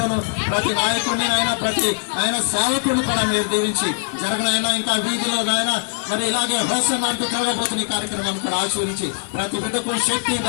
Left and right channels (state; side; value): silent; right; digital silence